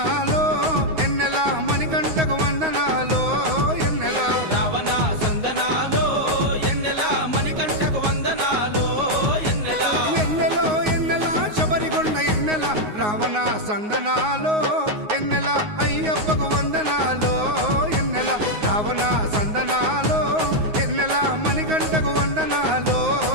ఎన్నెల మణికంఠకు వందనాలో ఎన్నెల రావణ సందనాలో ఎన్నెల మణికంఠకు వందనాలో ఎన్నెల ఎన్నెలో ఎన్నెల శబరికొండ ఎన్నెల రావణ సందనాలో ఎన్నెల అయ్యప్పకు వందనాలో ఎన్నెల రావణ సందనాలో ఎన్నెల మణికంఠకు వందనాలో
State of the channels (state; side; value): late; left; 9.5 ms